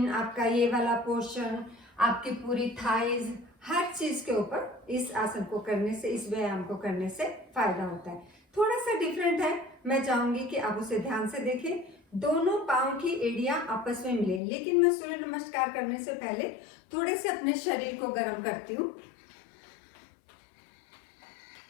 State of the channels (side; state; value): right; drops out; at 14.4 s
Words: आपका ये वाला पोर्शन, आपकी पूरी थाइज, हर चीज के ऊपर इस आसन को करने से, इस व्यायाम को करने से फायदा होता है। थोड़ा सा डिफरेंट है, मैं चाहूंगी कि आप उसे ध्यान से देखें। दोनों पांव की एड़ियां आपस में मिले, लेकिन मैं सूर्य नमस्कार करने से पहले थोड़े से अपने शरीर को गर्म करती हूँ।